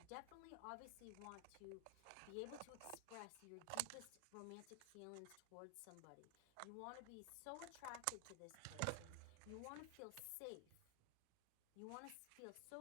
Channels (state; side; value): different; both; correlation 0.00